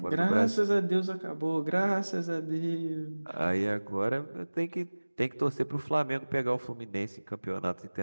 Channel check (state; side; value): inverted; both; correlation -1.00